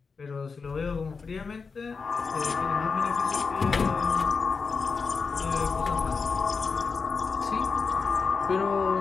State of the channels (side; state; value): right; quieter; 5.0 dB